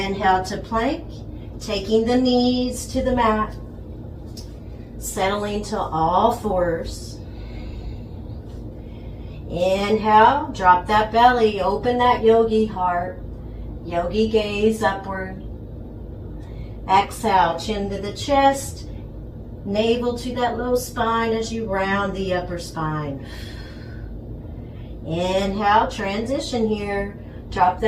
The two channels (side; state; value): both; identical; correlation 1.00